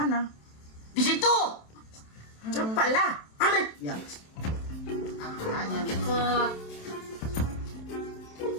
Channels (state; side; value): late; right; 27 ms